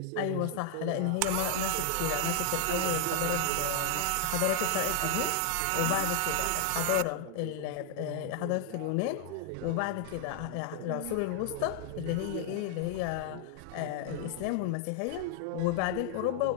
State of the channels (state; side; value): different; both; correlation 0.00